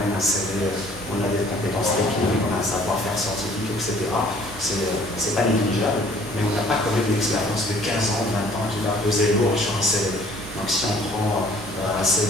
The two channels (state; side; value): noise; right; hum, 15 dB below the sound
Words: un CV, on a des compétences techniques, on a un savoir-faire scientifique, etc. C'est pas négligeable, mais on n'a pas quand même l'expérience de 15 ans, 20 ans qui va peser lourd sur un CV. Donc si on prend un